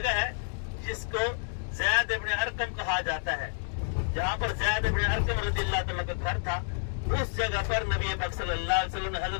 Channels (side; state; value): right; silent; digital silence